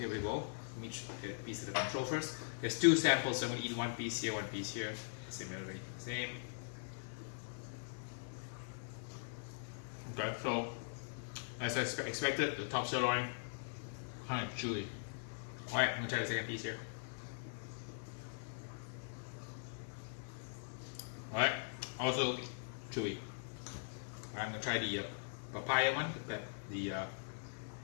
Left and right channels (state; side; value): silent; right; 50 dB below the other